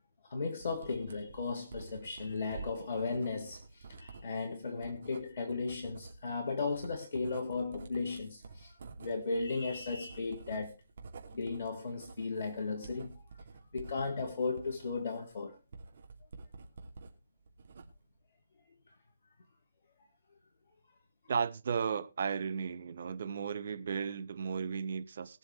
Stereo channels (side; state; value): both; inverted; correlation -0.76